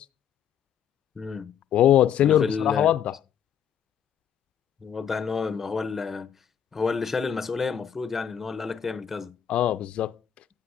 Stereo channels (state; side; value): quieter; right; 8.7 dB